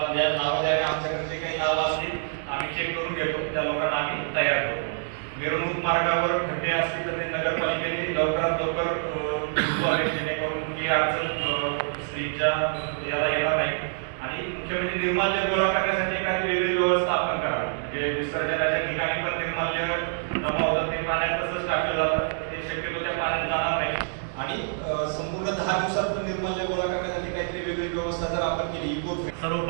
ज्या नावं द्यावे, आमच्याकडे जे काही नावं असतील आम्ही चेक करून घेतो, त्या लोकांना आम्ही तयार करतो. मिरवणूक मार्गावर खड्डे असतील तर ते नगरपालिकेने लवकरात लवकर जेणेकरून ती अडचण स्त्रीच्या याला येणार नाही. आणि मुख्य म्हणजे निर्माल्य गोळा करण्यासाठी एखादी वेगळी व्यवस्था आपण करावी. म्हणजे विसर्जनाच्या ठिकाणी पण निर्माल्य जमा होतं, ते पाण्यात तसंच टाकलं जातं, ते शक्यतो त्या पाण्यात जाणार नाही. आणि संपूर्ण 10 दिवसात निर्माल्य गोळा करण्यासाठी काहीतरी वेगळी व्यवस्था जर आपण केली.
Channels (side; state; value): left; silent; digital silence